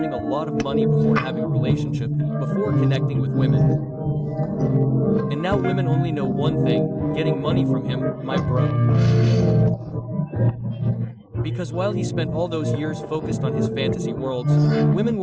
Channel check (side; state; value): both; identical; correlation 1.00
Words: a lot of money before having a relationship, before connecting with women. And now women only know one thing, getting money from him, my bro. Because while he spent all those years focused on his fantasy worlds, women